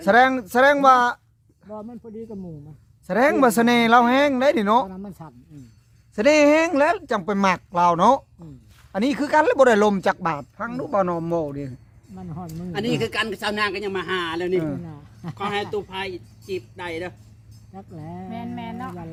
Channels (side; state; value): both; identical; correlation 1.00